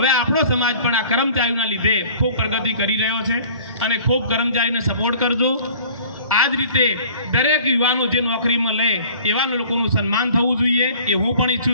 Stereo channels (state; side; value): inverted; both; correlation -0.48